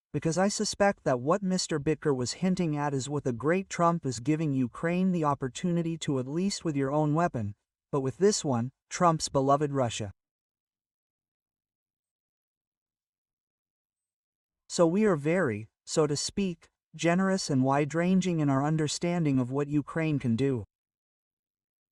because I suspect that what Mr. Bicker was hinting at is what the great Trump is giving Ukraine the opportunity to, at least with your own weapon, but with this one, Trump's beloved Russia. So we are very, so to speak, generous and wide-ranging in our understanding of what Ukraine can do.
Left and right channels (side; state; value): both; identical; correlation 1.00